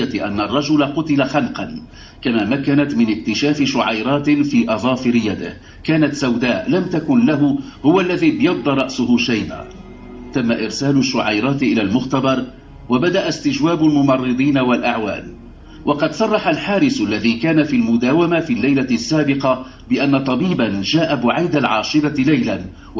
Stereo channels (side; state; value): both; identical; correlation 1.00